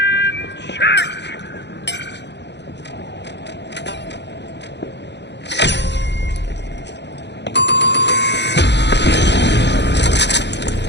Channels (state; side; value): late; right; 0.50 ms